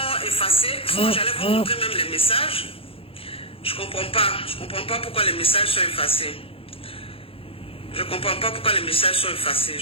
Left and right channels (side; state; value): right; late; 0.27 ms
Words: effacés. Sinon, j'allais vous montrer même les messages. Je ne comprends pas pourquoi les messages sont effacés. Je comprends pas pourquoi les messages sont effacés.